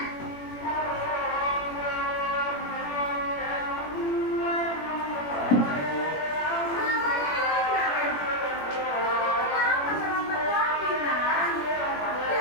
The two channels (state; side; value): late; right; 21 ms